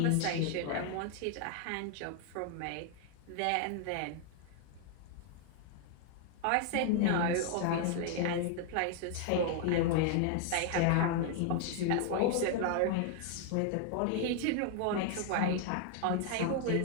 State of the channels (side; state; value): both; different; correlation 0.00